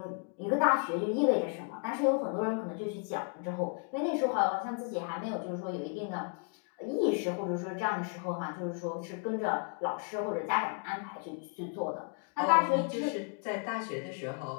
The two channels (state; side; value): quieter; right; 38.1 dB